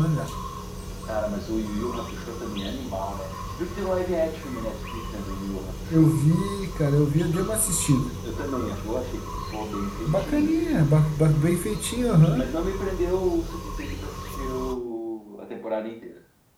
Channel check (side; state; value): both; identical; correlation 1.00